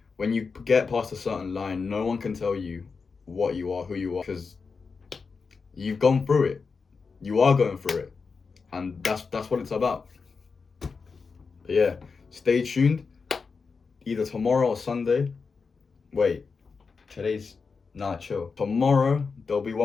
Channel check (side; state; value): right; quieter; 4.9 dB